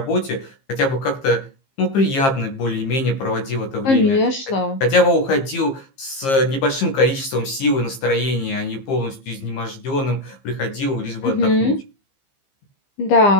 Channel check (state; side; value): late; right; 15 ms